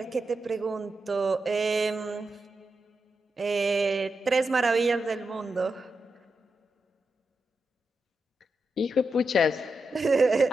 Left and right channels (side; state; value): both; normal; correlation 0.87